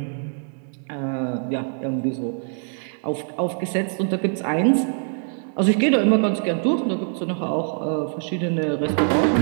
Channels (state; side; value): silent; left; 56 dB below the other